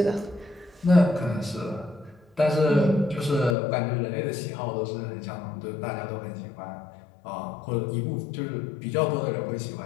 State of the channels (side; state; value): right; drops out; at 3.6 s